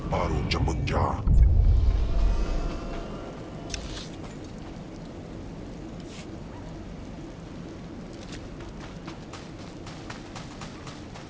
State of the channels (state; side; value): identical; both; correlation 1.00